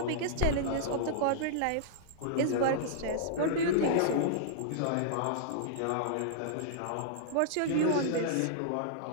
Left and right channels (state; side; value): different; both; correlation -0.02